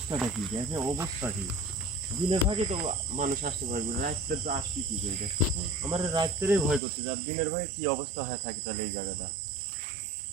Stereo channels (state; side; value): drops out; left; at 6.8 s